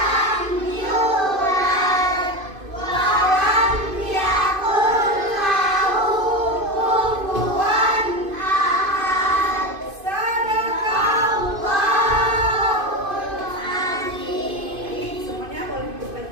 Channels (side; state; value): left; late; 2.5 ms